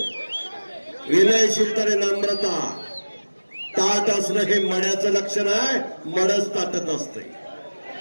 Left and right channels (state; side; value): inverted; both; correlation -1.00